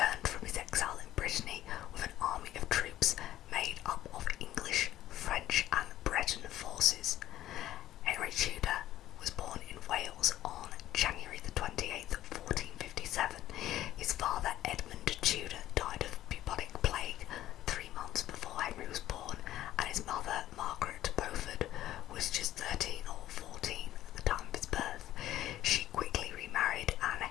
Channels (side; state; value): right; quieter; 13.5 dB